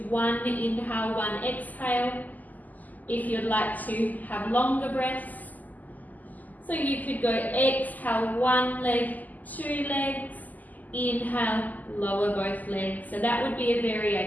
1 inhale, 1 exhale. If you'd like to have longer breaths. So you could go exhale 1 leg, 2 legs, inhale, lower both legs. So that would be a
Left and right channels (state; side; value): late; right; 0.081 ms